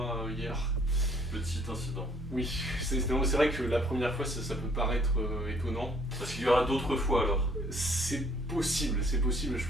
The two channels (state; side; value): normal; both; correlation 0.61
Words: hier. Petit incident. Oui, c'est vrai que la première fois, ça peut paraître étonnant. Parce qu'il y aura d'autres fois alors. C'est possible, je veux